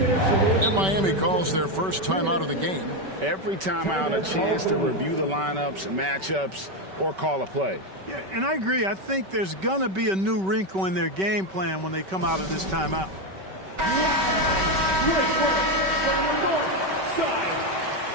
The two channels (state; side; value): late; left; 5.2 ms